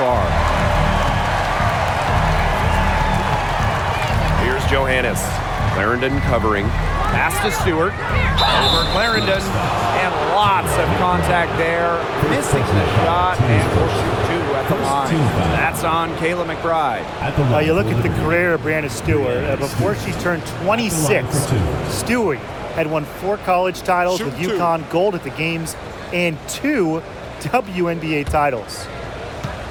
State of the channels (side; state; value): both; identical; correlation 1.00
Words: Here's Johannes. Clarendon covering. Pass to Stewart. Over Clarendon. And lots of contact there. Missing the shot. And we'll shoot two at the line. That's on Kayla McBride. You look at the career of Brianna Stewart. Before she turned 26, Stewart had won 4 college titles with UConn, gold at the games, and 2 WNBA titles.